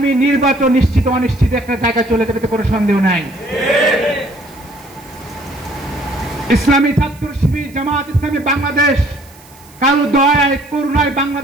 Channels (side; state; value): right; noise; hiss, 26 dB below the sound